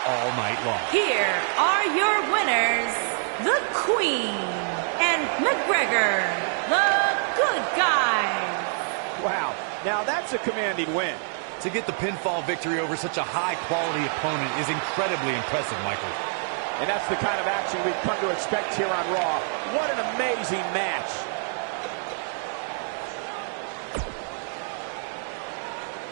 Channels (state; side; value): silent; left; 61 dB below the other